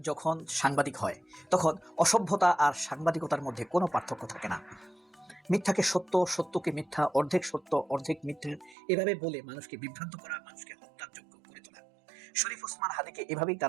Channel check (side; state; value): left; drops out; at 8.8 s